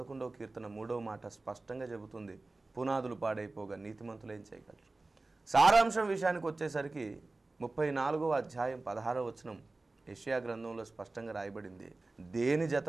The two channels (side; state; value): left; quieter; 3.2 dB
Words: కీర్తన 3వ మాట స్పష్టంగా చెబుతుంది, పునాదులు పాడైపోగా నీతిమంతులు ఏం చేయగలరు. సారాంశం విషయానికి వచ్చేసరికి 34వ అధ్యాయం 16వ వచనం యెషయా గ్రంథంలో స్పష్టంగా రాయబడింది, దేని